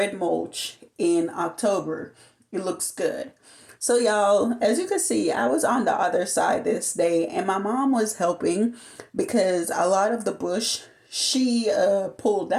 mulch in October, it looks good. So y'all, as you can see, I was on the other side this day and my mom was helping because a lot of the bush she pulled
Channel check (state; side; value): identical; both; correlation 1.00